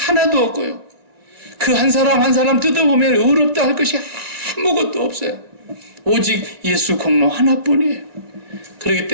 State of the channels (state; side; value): late; left; 1.9 ms